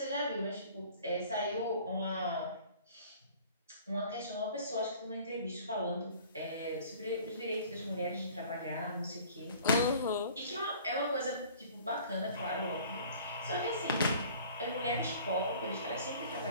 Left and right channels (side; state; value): both; inverted; correlation -0.49